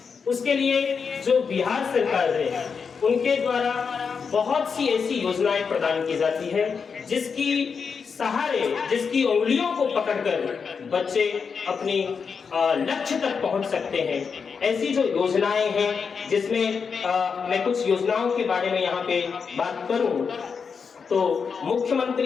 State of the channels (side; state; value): right; quieter; 5.8 dB